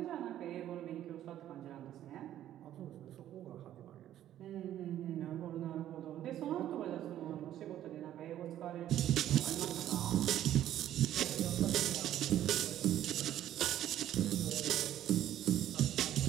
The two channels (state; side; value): quieter; left; 12.0 dB